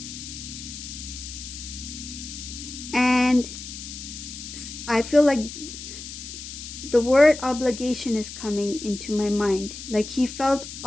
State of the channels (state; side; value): noise; left; hiss, 11 dB below the sound